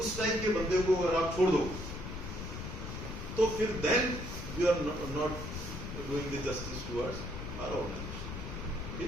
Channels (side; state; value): left; noise; rumble, 7 dB below the sound